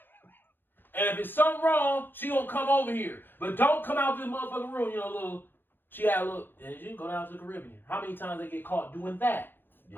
And if it's something wrong, she gonna come over here. But don't come out this motherfucking room, she had a little, and you go down to the Caribbean. How many times they get caught doing that?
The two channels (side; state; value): right; late; 0.097 ms